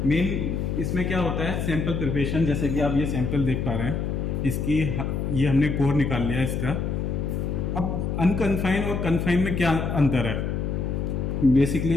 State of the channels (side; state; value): left; noise; hum, 1 dB below the sound